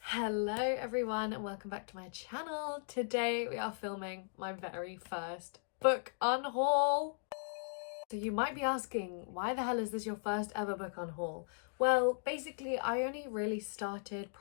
Hello everyone and welcome back to my channel. Today we are filming my very first book unhaul. So you might be asking, why the hell is this your first ever book unhaul? Well, basically I only really started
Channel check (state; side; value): silent; right; digital silence